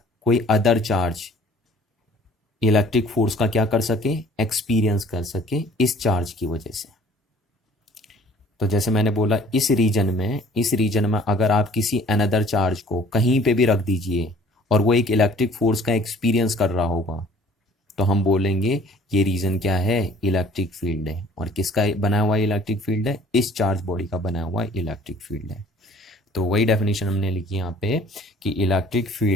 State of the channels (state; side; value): normal; both; correlation 0.53